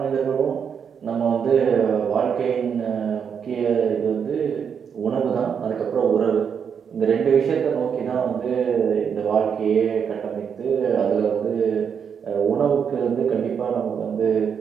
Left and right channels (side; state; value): left; quieter; 7.2 dB